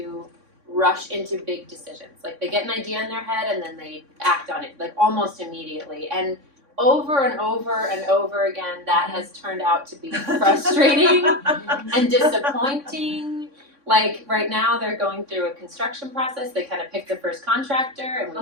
rush into big decisions. Like they get an idea in their head and then they act on it, like almost immediately. And over and over and over again, that has turned out to be frustrating and disappointing. Like right now, they're going through a construction process. They kind of picked the first contractor, and we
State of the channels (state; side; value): late; left; 3.6 ms